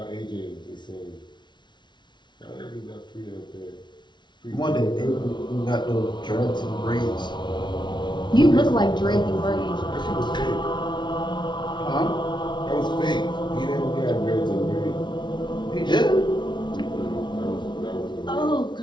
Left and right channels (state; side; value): late; right; 0.22 ms